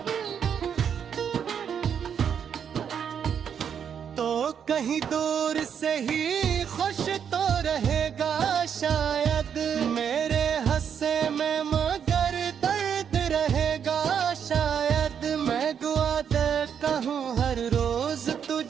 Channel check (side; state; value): left; quieter; 7.9 dB